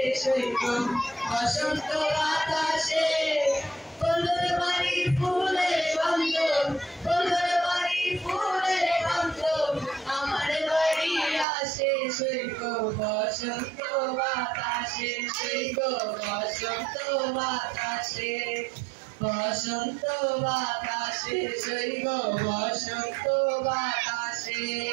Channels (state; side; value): drops out; left; at 11.5 s